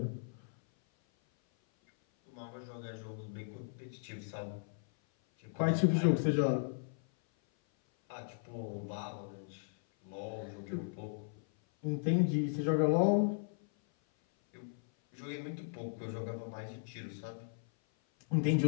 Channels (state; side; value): silent; right; 53 dB below the other